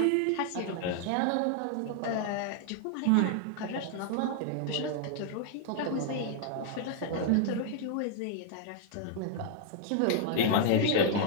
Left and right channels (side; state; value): both; different; correlation 0.00